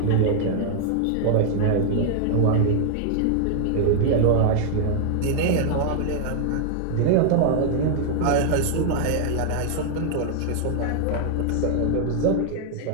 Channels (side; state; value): both; different; correlation 0.00